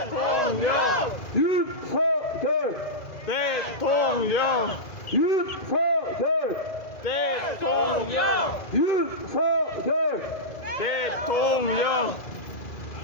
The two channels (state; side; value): late; right; 2.0 ms